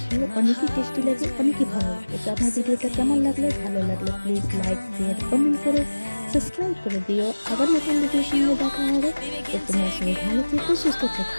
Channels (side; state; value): both; inverted; correlation -1.00